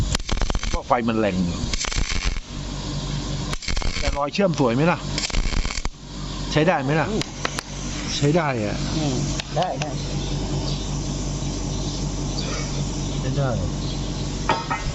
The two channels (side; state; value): both; identical; correlation 1.00